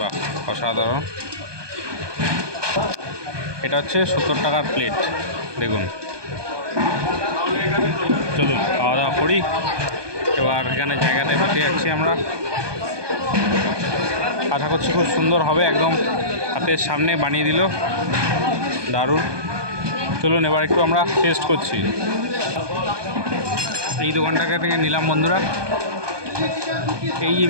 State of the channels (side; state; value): left; late; 1.2 ms